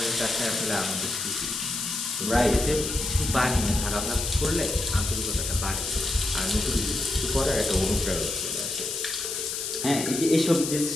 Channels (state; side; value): noise; left; hiss, 3 dB below the sound